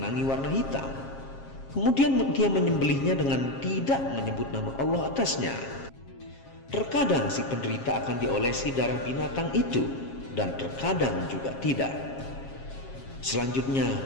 warna hitam. Kemudian dia menyembelihnya dengan tidak menyebut nama Allah atasnya. Terkadang si penderita akan diolesi darah binatang itu, dan terkadang juga tidak.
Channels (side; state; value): right; late; 7.4 ms